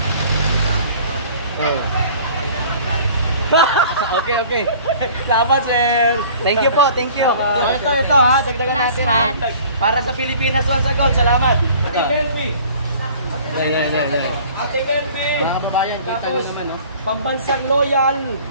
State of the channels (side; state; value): both; inverted; correlation -0.49